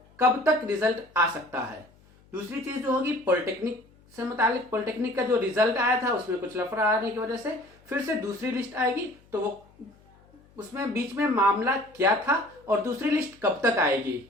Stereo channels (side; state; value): left; noise; hum, 29 dB below the sound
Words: कब तक रिजल्ट आ सकता है। दूसरी चीज जो होगी पॉलिटेक्निक से मुतालिक, पॉलिटेक्निक का जो रिजल्ट आया था उसमें कुछ लफड़ा आने की वजह से फिर से दूसरी लिस्ट आएगी, तो वो उसमें बीच में मामला क्या था और दूसरी लिस्ट कब तक आएगी।